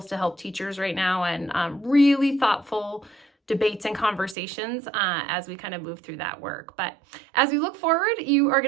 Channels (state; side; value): drops out; left; at 4.4 s